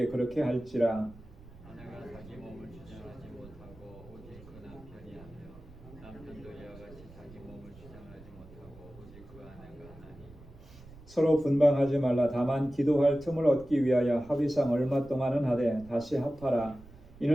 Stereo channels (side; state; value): right; noise; rumble, 20 dB below the sound